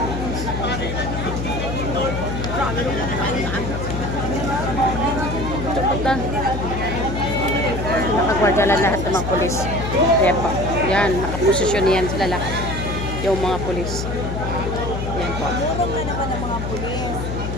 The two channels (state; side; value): noise; left; hum, 4 dB below the sound